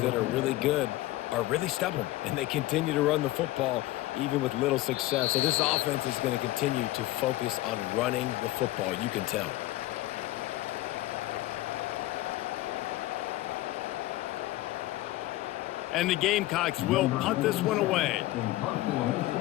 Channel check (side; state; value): right; quieter; 17.0 dB